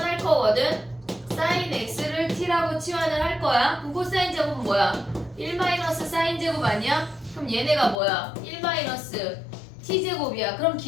거거든. 사인 x를 t라고 치환을 할 거야. 그럼 코사인 제곱은 뭐야? 1 마이너스 사인 제곱 아니야? 그럼 얘네가 뭐야? 1 마이너스 t제곱이야. 그럼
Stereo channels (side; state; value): right; drops out; at 8.0 s